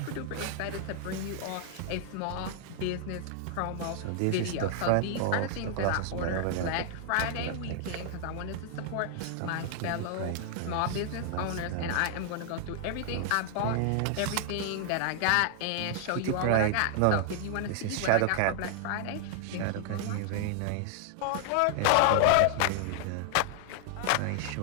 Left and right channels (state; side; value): different; both; correlation 0.00